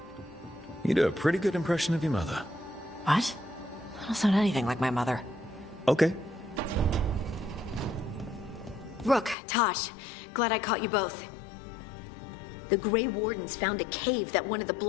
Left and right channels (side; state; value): right; drops out; at 9.3 s